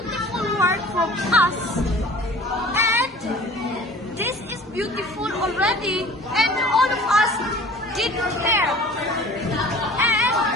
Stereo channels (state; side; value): normal; both; correlation 0.45